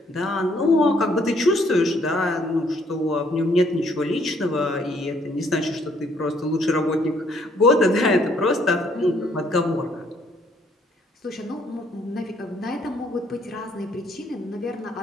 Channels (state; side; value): normal; both; correlation 0.66